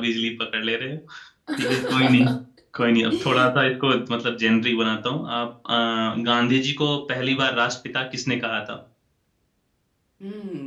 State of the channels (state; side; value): identical; both; correlation 1.00